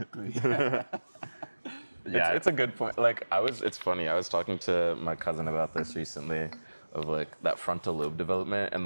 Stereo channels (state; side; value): inverted; both; correlation -1.00